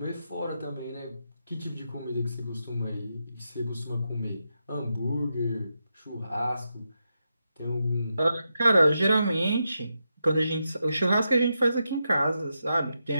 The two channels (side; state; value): both; inverted; correlation -0.86